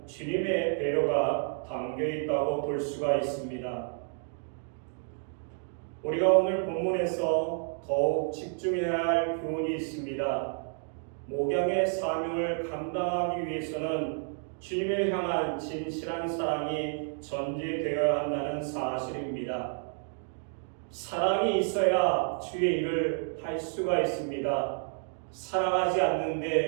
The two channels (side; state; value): left; silent; 58 dB below the other